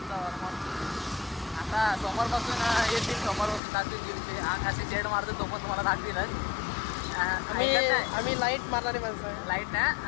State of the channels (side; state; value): right; drops out; at 3.6 s